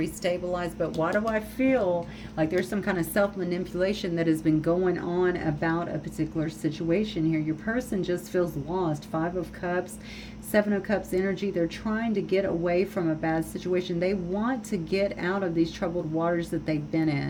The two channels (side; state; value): both; identical; correlation 1.00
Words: But why do I feel like there's some kind of self-manipulation that has been going on about a particular situation here? Your person just feels lost. 5 of Cups, 7 of Cups energy. They're trying to get away from a bad situation. They want to get out of these troubled waters that they've been